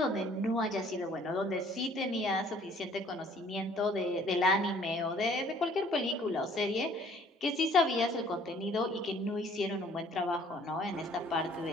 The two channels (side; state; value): both; normal; correlation 0.57